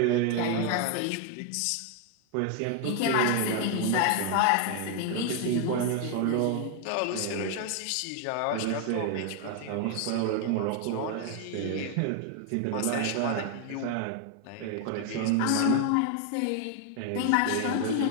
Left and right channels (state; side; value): different; both; correlation 0.00